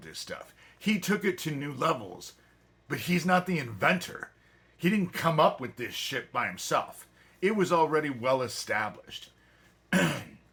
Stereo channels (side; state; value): both; identical; correlation 1.00